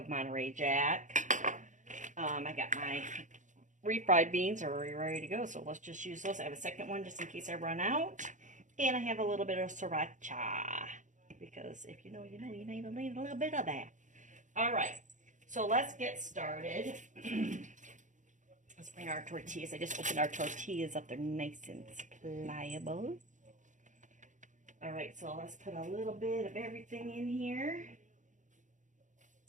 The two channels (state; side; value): late; left; 0.36 ms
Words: Monterey Jack. I got my refried beans are already ready to go, so let's just use those. I have a second one just in case I run out. And I have a little bit of sriracha, because if you know, you know, you need a little bit of that. All right, so let's get started. Let's bring our tortillas. I just opened our tortillas up. They're nice and pliable. All right, so let's put a little bit of everything in here.